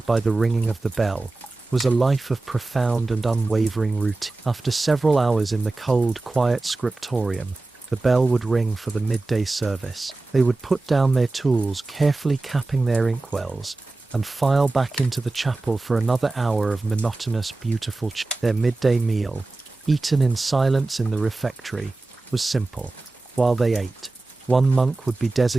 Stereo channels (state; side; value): quieter; left; 3.2 dB